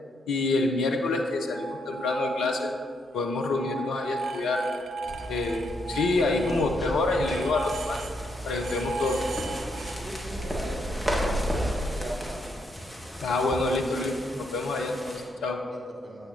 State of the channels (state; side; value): normal; both; correlation 0.76